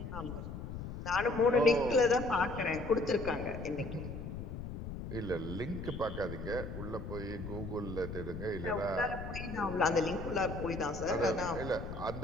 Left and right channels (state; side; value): noise; left; rumble, 8 dB below the sound